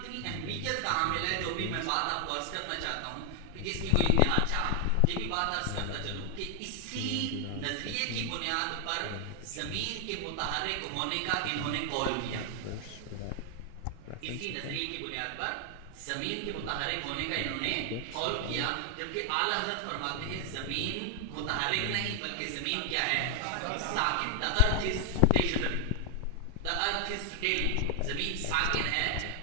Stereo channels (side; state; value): both; different; correlation 0.00